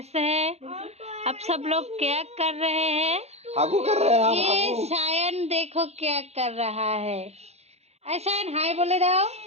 हैं? आप सब लोग क्या कर रहे हैं? हागू कर रहे हैं ये शायन देखो क्या कर रहा है। शायन हाय बोले जाओ।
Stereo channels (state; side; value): late; left; 0.31 ms